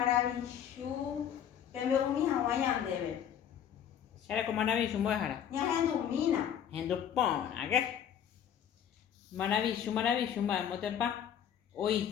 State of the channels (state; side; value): quieter; right; 9.2 dB